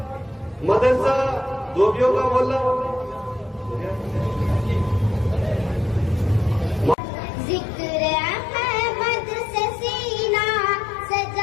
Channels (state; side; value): drops out; right; at 7.0 s